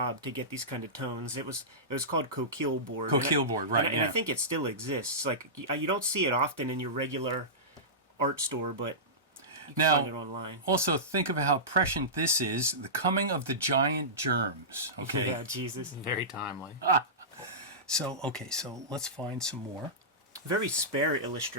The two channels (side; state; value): both; normal; correlation -0.18